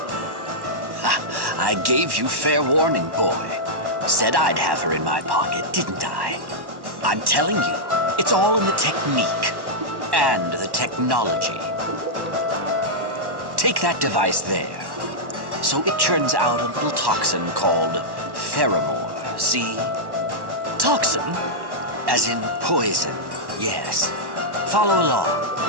Ha, I gave you fair warning, boy. Said I'd have her in my pocket, didn't I? I'm telling you, it's all in the technique and the technology. Take that device there. So it churns out a little toxin called pheromore, see? Toxin? As in poison, yes. Follow along.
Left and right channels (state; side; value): late; left; 1.1 ms